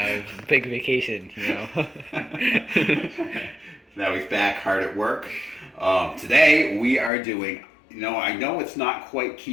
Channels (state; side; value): drops out; right; at 7.1 s